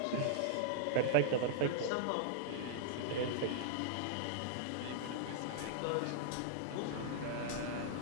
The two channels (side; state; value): both; different; correlation -0.01